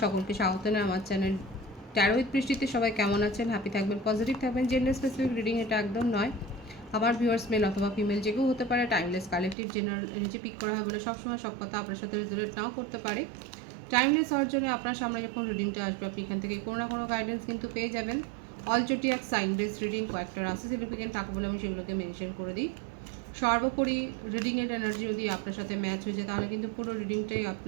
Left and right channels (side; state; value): left; drops out; at 9.6 s